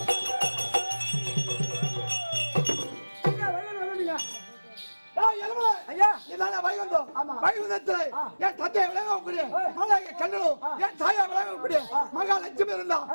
வைகுந்தத்தில் என் தந்தையை விளங்கக்கூடிய மகாய கண்ணனும் என் தாயா விளங்கக்கூடிய மகாலட்சுமி இருந்தா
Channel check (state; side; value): inverted; both; correlation -1.00